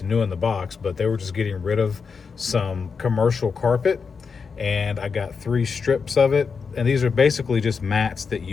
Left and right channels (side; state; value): right; quieter; 5.5 dB